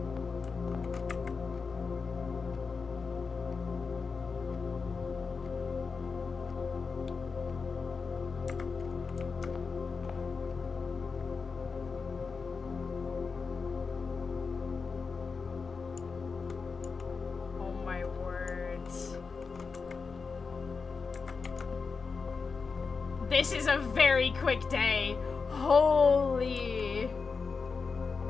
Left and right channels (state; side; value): quieter; right; 4.9 dB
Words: Oh my words. This is a very quick day. Holy.